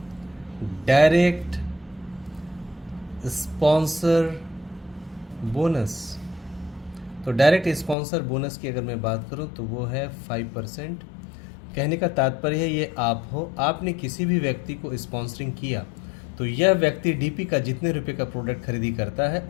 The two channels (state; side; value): drops out; right; at 8.0 s